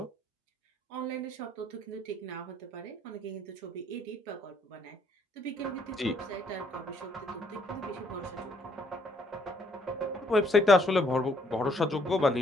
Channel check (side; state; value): both; normal; correlation 0.67